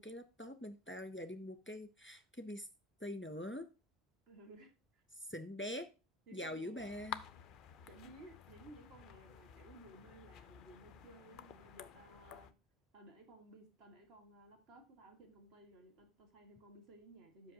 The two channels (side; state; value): both; normal; correlation 0.42